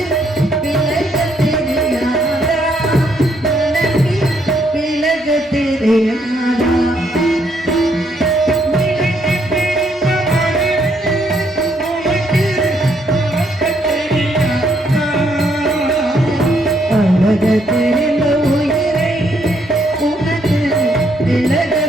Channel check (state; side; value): normal; both; correlation 0.72